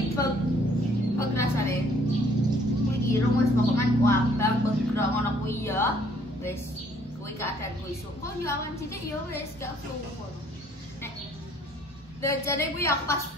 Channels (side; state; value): both; normal; correlation 0.62